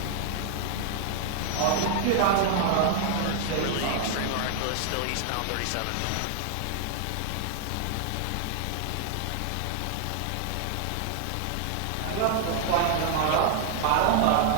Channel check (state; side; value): different; both; correlation 0.00